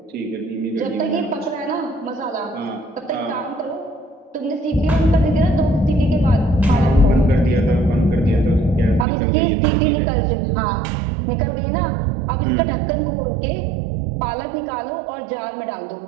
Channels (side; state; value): left; drops out; at 9.1 s